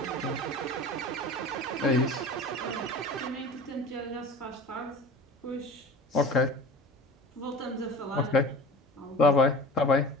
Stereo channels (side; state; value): both; normal; correlation 0.38